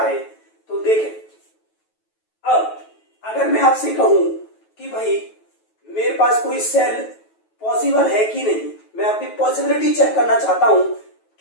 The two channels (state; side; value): late; right; 9.2 ms